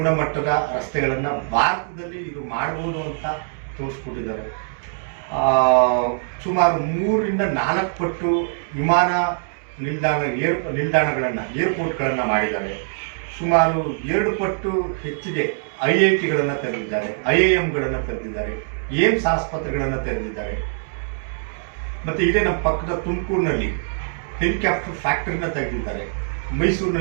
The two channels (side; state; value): left; silent; digital silence